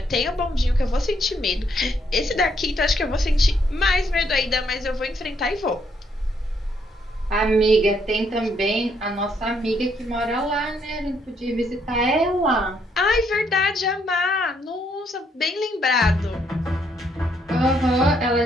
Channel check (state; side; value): normal; both; correlation 0.72